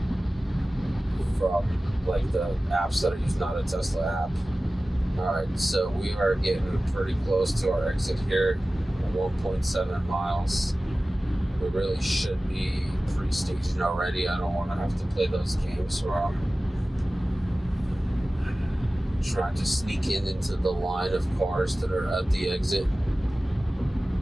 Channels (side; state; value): both; normal; correlation 0.96